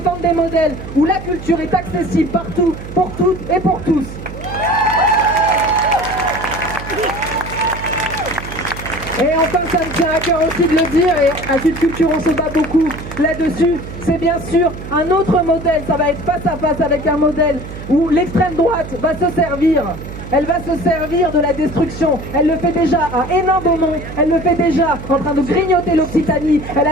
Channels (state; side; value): noise; right; hum, 11 dB below the sound